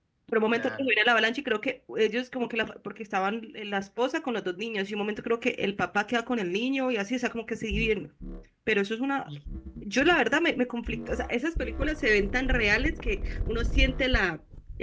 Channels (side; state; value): both; identical; correlation 1.00